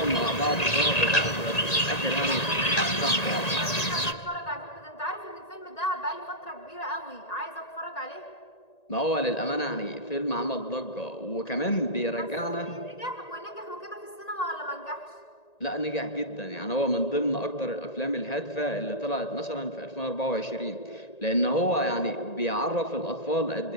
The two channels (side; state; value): right; late; 1.9 ms